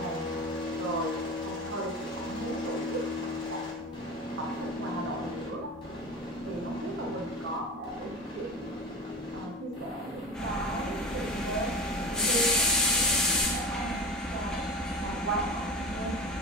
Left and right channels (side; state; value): both; normal; correlation 0.31